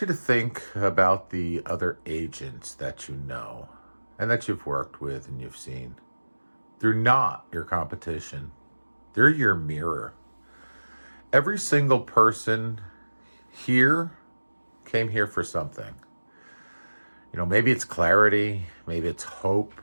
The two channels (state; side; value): inverted; both; correlation -1.00